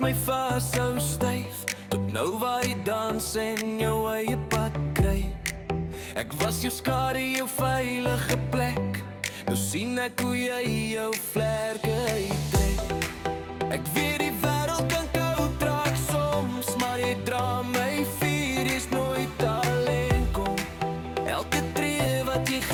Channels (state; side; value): identical; both; correlation 1.00